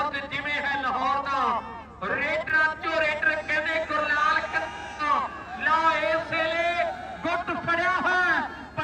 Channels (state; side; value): identical; both; correlation 1.00